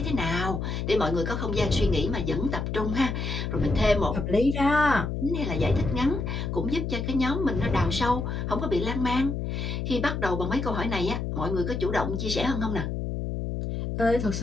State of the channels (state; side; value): noise; left; hum, 3 dB below the sound